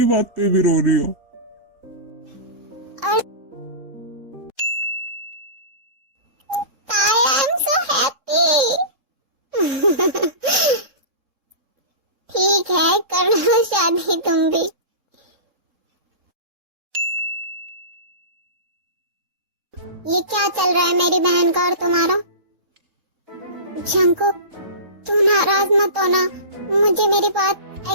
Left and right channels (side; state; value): left; late; 3.6 ms